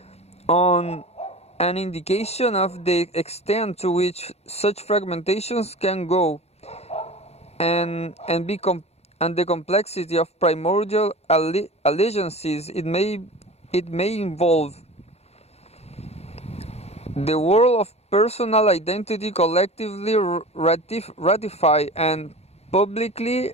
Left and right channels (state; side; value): late; right; 0.31 ms